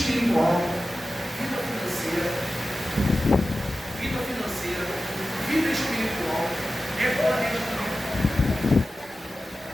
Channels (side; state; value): both; normal; correlation 0.94